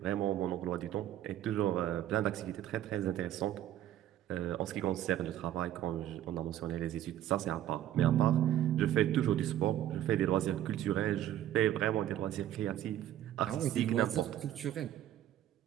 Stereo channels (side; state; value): left; quieter; 12.1 dB